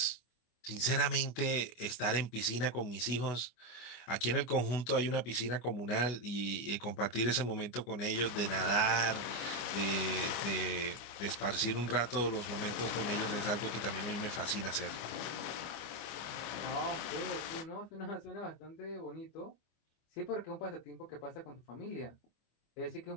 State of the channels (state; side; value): late; right; 25 ms